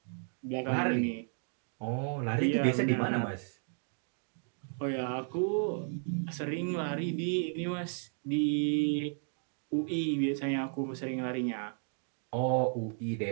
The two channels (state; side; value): silent; left; 55 dB below the other